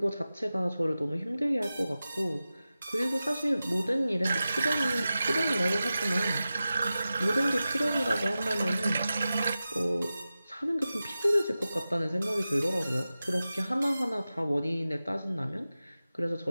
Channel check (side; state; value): both; inverted; correlation -0.94